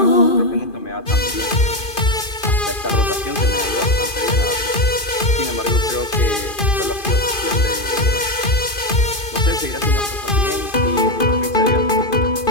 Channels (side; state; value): right; late; 2.5 ms